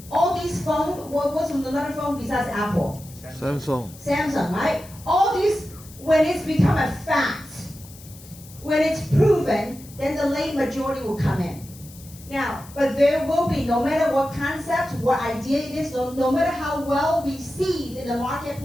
All these phones, what's another phone besides Apple? Samsung, right? All these, when it's become a fact, when it's proven, then the late majority will come in. Now, but there will be, no matter what concept, what idea it is, no matter how well received in the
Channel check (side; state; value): left; noise; hiss, 20 dB below the sound